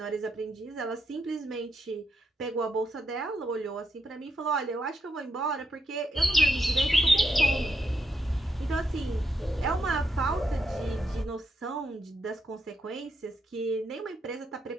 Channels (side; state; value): both; normal; correlation 0.81